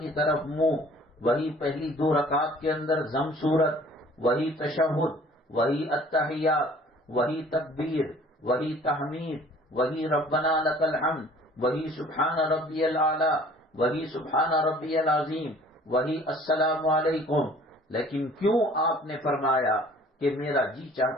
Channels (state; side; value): normal; both; correlation 0.52